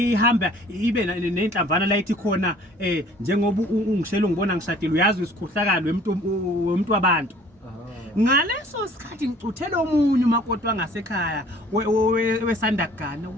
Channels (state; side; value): normal; both; correlation 0.53